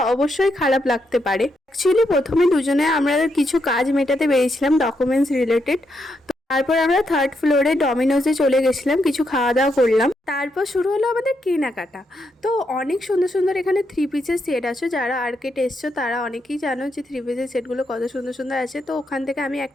অবশ্যই খারাপ লাগতে পারে। অ্যাকচুয়ালি প্রথমে দুজনে আমরা কিছু কাজ মেটাতে বেরিয়েছিলাম, ডকুমেন্টস রিলেটেড। তারপর আমরা থার্ড ফ্লোরে ডমিনোজে চলে গেছিলাম, কিছু খাওয়া দাওয়া করলাম। তারপর শুরু হলো আমাদের কেনাকাটা। তো অনেক সুন্দর সুন্দর এখানে থ্রি পিসের সেট আছে। যারা আর্কেট এসছো তারা অনেকেই জানো যে থ্রি পিসের সেটগুলো কত সুন্দর সুন্দর আছে। তো ওখান থেকে আমি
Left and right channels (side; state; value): both; normal; correlation 0.80